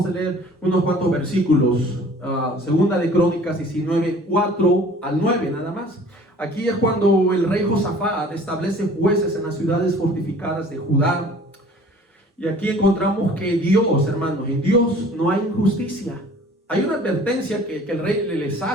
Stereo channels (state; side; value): normal; both; correlation 0.49